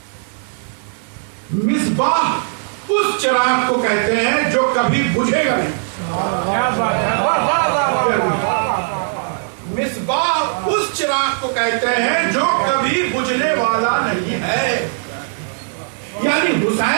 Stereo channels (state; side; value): silent; left; digital silence